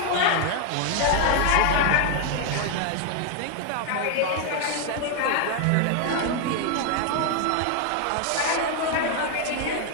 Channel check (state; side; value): different; both; correlation 0.01